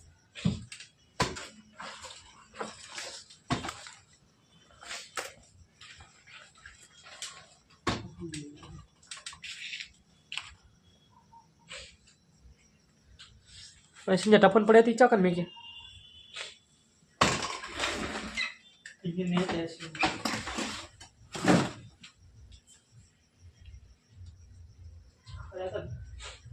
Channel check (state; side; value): identical; both; correlation 1.00